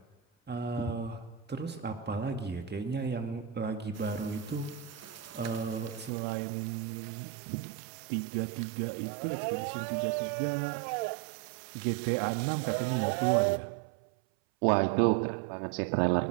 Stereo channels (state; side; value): drops out; left; at 6.1 s